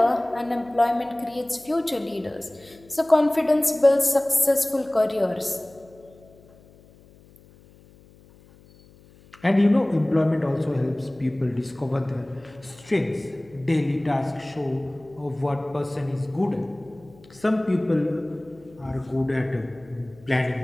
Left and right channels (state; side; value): noise; left; hum, 26 dB below the sound